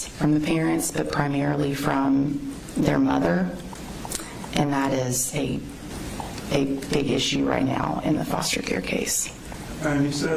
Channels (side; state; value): both; identical; correlation 1.00